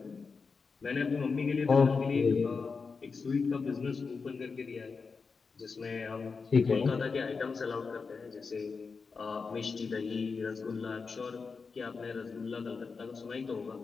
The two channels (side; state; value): right; quieter; 4.9 dB